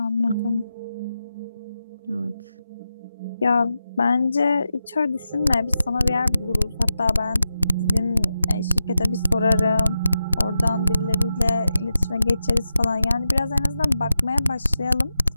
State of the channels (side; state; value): both; inverted; correlation -0.90